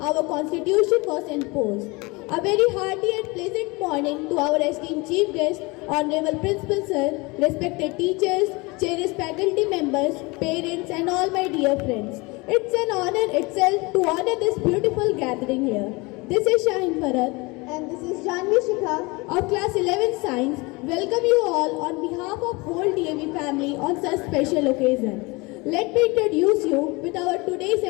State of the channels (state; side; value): quieter; right; 25.5 dB